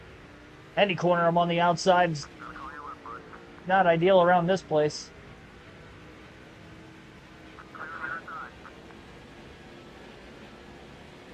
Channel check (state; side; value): identical; both; correlation 1.00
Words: Any corner I'm on the outside is not ideal around this place.